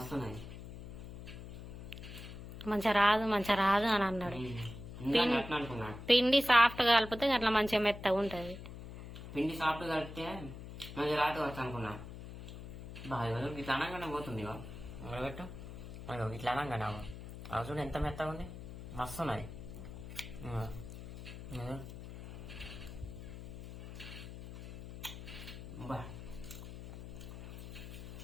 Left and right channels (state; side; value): noise; left; hum, 11 dB below the sound